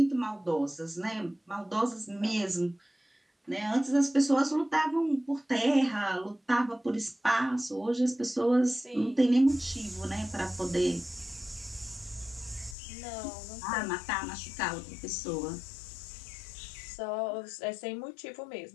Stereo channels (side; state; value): right; drops out; at 12.8 s